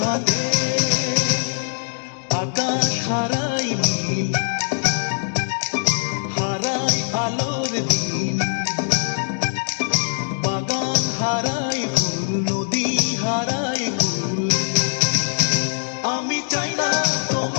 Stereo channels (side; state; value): right; silent; digital silence